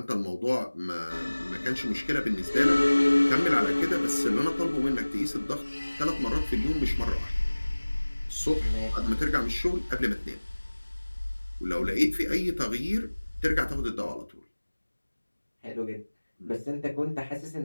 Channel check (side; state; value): both; inverted; correlation -1.00